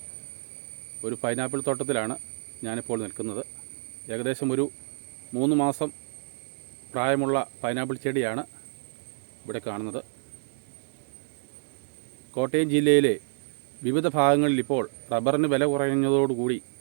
ഒരു പൈനാപ്പിൾ തോട്ടത്തിലാണ് ഞാനിപ്പോൾ നിൽക്കുന്നത്. ഏകദേശം ഒരു 3 മാസം പ്രായമുള്ള പൈനാപ്പിൾ ചെടിയാണ് ഇവിടെ കാണുന്നത്. കോട്ടയം ജില്ലയിലെ വിവിധ ഭാഗങ്ങളിൽ ഇപ്പോൾ റബ്ബറിന് വില കുറഞ്ഞതോടുകൂടി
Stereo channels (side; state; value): left; silent; 58 dB below the other